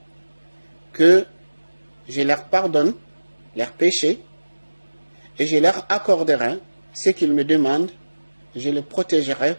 que je leur pardonne leurs péchés et je leur accorderai ce qu'ils me demandent, je les protégerai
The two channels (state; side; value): inverted; both; correlation -1.00